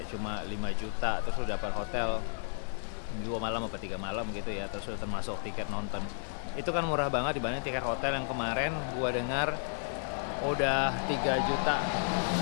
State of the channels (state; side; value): silent; right; 56 dB below the other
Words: cuma 5 juta, terus lu dapat hotel 2 malam atau 3 malam gitu ya, terus udah termasuk tiket nonton. Itu kan murah banget dibanding tiket hotel yang kemarin gua dengar udah 3 juta